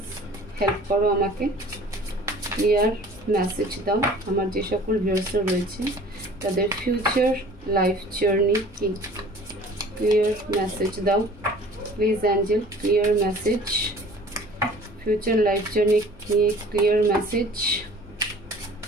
হেল্প করো আমাকে, ক্লিয়ার মেসেজ দাও। আমার যে সকল ভিউয়ার্সরা রয়েছে তাদের ফিউচার লাইফ জার্নি কি, ক্লিয়ার মেসেজ দাও please Angel, clear message, future life journey ki clear message।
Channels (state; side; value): normal; both; correlation 0.48